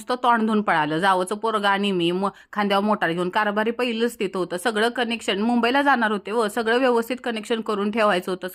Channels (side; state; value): both; identical; correlation 1.00